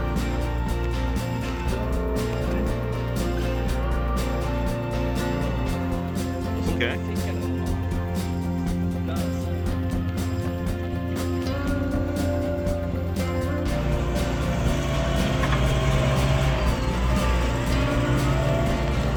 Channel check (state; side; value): identical; both; correlation 1.00